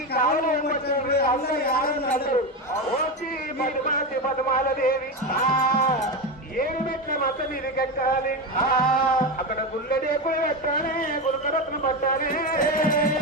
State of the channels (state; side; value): normal; both; correlation 0.17